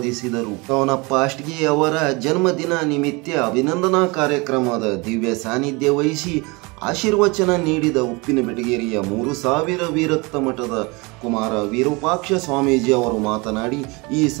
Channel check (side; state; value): left; quieter; 26.6 dB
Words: ತವನಪ್ಪ ಅಷ್ಟಗಿ ಅವರ ಜನ್ಮದಿನ ನಿಮಿತ್ತ ಅಭಿನಂದನಾ ಕಾರ್ಯಕ್ರಮದ ದಿವ್ಯ ಸಾನ್ನಿಧ್ಯ ವಹಿಸಿ ಆಶೀರ್ವಚನ ನೀಡಿದ ಉಪ್ಪಿನ ಬೆಟಗೇರಿಯ 3000 ವಿರಕ್ತ ಮಠದ ಕುಮಾರ ವಿರೂಪಾಕ್ಷ ಸ್ವಾಮೀಜಿ ಅವರು ಮಾತನಾಡಿ, ಈ